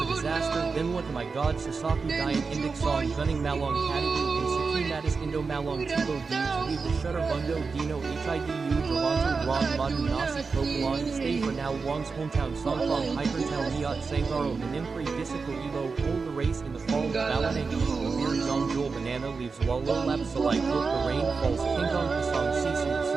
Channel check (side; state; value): left; quieter; 4.7 dB